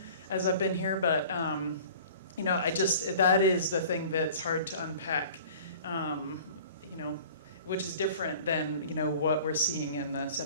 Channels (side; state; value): both; inverted; correlation -0.45